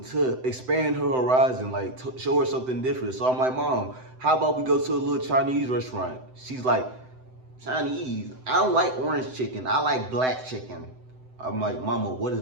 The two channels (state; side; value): late; left; 7.8 ms